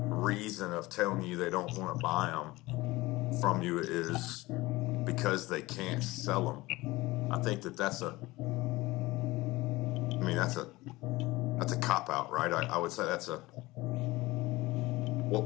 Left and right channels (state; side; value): quieter; right; 20.2 dB